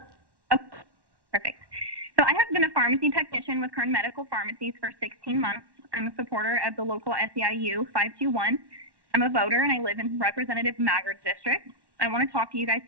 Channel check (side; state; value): left; late; 1.1 ms